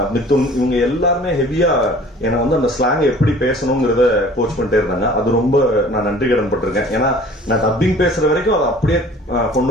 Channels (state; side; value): normal; both; correlation 0.49